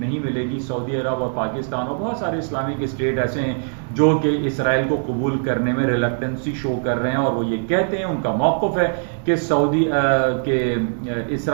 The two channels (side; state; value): left; silent; 65 dB below the other